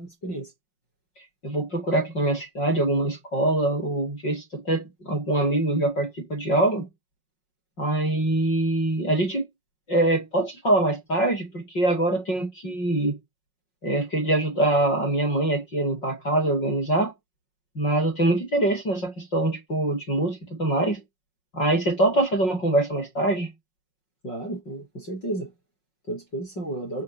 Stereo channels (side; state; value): right; late; 5.5 ms